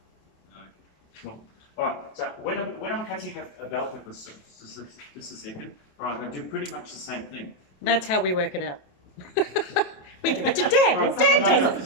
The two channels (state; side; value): late; right; 27 ms